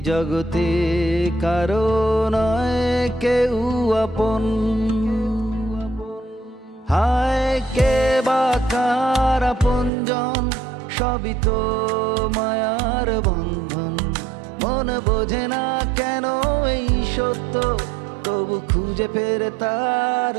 জগতে কারো নয় কেউ আপন, হায় কে বা কার আপনজন, সবই তো মায়ার বন্ধন। মন বোঝে না কেন এই সত্য, তবু খুঁজে ফেরে তার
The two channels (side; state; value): left; drops out; at 9.9 s